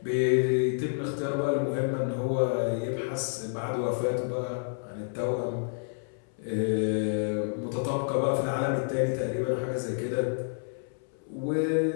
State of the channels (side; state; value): right; silent; 58 dB below the other